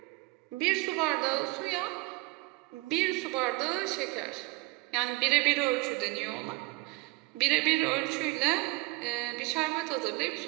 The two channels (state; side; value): quieter; left; 23.3 dB